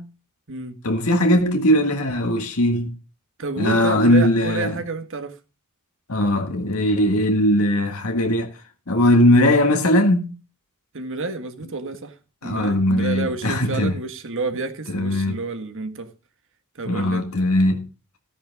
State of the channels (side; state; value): both; normal; correlation 0.35